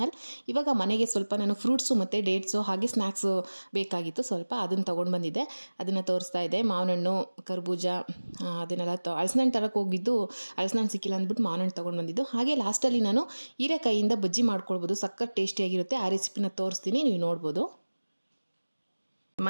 ಇವಾಗ ಮನೆಗೆ ಸ್ವಲ್ಪ ನಾನು ಫ್ರೂಟ್ಸು ಮತ್ತು ಡೇಟ್ಸು ಹಾಗೆ ಸ್ನ್ಯಾಕ್ಸು ಬೇಕಾಗಿತ್ತು. ಸ್ವಲ್ಪ ಅದನ್ನು ತೊಗೊಂಡು ಬಂದಿದ್ದೆ, ಅದನ್ನು ತೋರಿಸ್ತಾ ಇದೆ. ಮಾವಿನ ಹಣ್ಣು, ಕರ್ಬೂಜ, ಅದನ್ನೆಲ್ಲ ಹಲಸಿನ ಹಣ್ಣು ತರಕ್ಕೆ ಹೋಗಿದ್ದು ಹಲಸಿನ ಹಣ್ಣು ಸಿಕ್ಕಿಲ್ಲ ಅಂದ್ಬಿಟ್ಟು ಮಾವಿನ ಹಣ್ಣು ತೊಗೊಂಡು ಬಂದಿದ್ದು. ಹಾಗೆ ಲಾಸ್ಟಲ್ಲಿ ನಾನು ಹೀರೆಕಾಯಿಯಿಂದ ಬಜ್ಜಿ ಮಾಡ್ಕೊಳ್ಬೋದು, ಸಖತ್ ಟೇಸ್ಟಿಯಾಗಿರುತ್ತೆ. ಆ ರೆಸಿಪಿನ ತೋರಿಸ್ತೀನಿ, ನೀವು ನೋಡ್ಬೋದು.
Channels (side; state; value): both; inverted; correlation -1.00